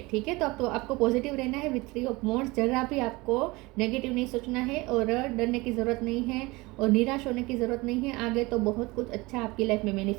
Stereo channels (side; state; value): left; quieter; 22.9 dB